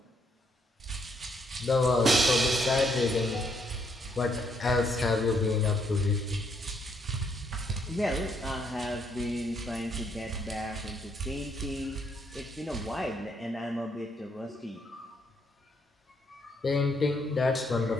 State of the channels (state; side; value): normal; both; correlation 0.72